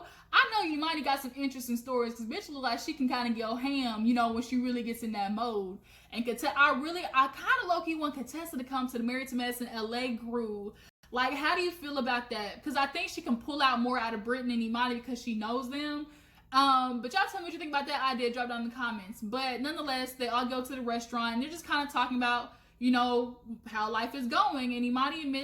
know Imani got some interesting stories, because bitch look like she can kind of go ham, you know, when she really gets in that mode. And I kind of low-key want Contessa to come to the Married to Medicine LA GIRRRL. Like, how do you feel about that? Because I think she can pull out more out of Britton and Imani because she knows them. But y'all tell me what you think about that idea. Drop down in the comments. But nonetheless, they all go to the restaurant, and they're just kind of talking about, you know, how life is going. And Imani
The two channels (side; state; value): both; identical; correlation 1.00